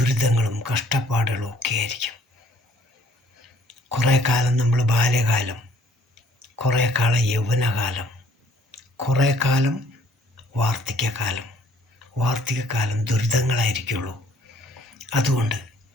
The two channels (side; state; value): both; normal; correlation 0.60